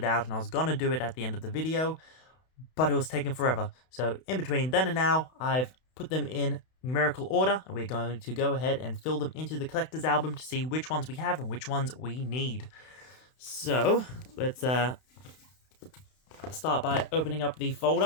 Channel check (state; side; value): late; right; 32 ms